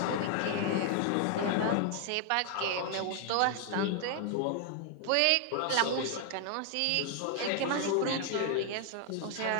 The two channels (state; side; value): different; both; correlation 0.00